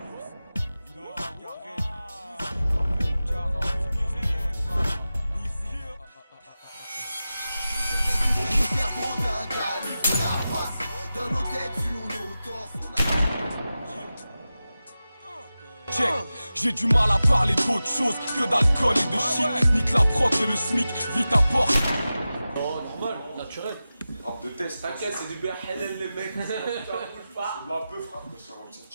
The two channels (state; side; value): inverted; both; correlation -0.94